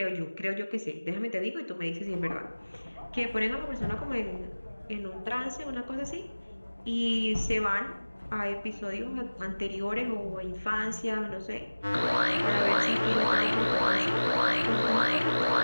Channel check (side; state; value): both; inverted; correlation -1.00